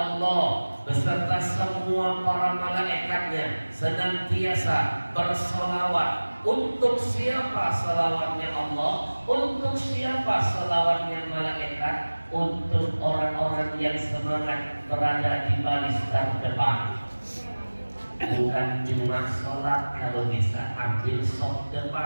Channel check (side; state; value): both; inverted; correlation -1.00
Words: beserta semua para malaikatnya senantiasa berselawat. Untuk siapa selawatnya Allah? Untuk siapa selawatnya malaikat? Untuk orang-orang yang semangat berada di baris terdepan. Bukan cuma sholat, kalau bisa ambil sop